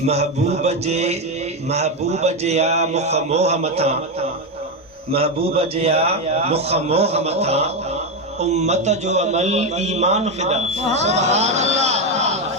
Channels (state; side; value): normal; both; correlation 0.09